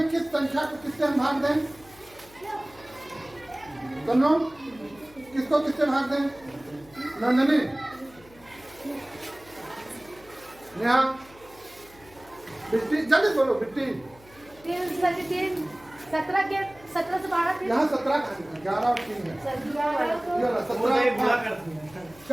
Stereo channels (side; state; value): left; noise; hum, 24 dB below the sound